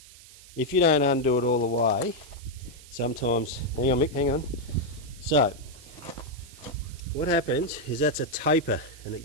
if you don't undo it all the way, sometimes, hang on Mick, hang on. So, what happens is that's a taper and it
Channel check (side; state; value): right; noise; hiss, 20 dB below the sound